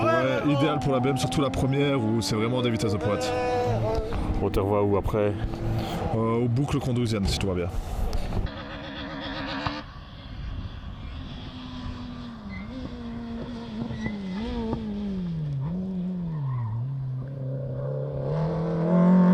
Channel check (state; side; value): identical; both; correlation 1.00